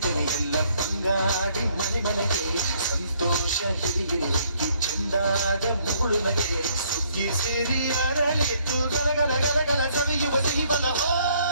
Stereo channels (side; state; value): both; inverted; correlation -0.66